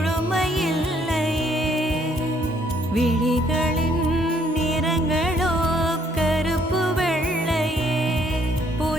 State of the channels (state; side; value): normal; both; correlation 0.66